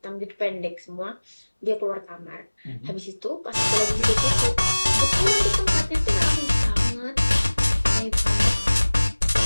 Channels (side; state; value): both; inverted; correlation -1.00